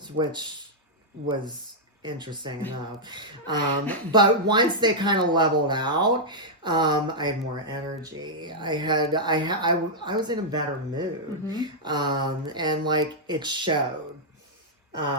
which was interesting enough. But once they kind of leveled out, I had more energy. I was in a better mood. And like it showed.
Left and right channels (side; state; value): both; normal; correlation -0.07